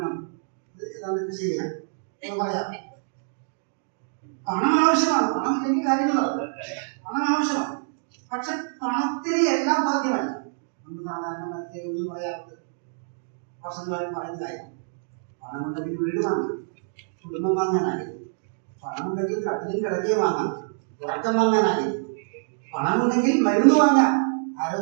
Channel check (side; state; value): left; silent; digital silence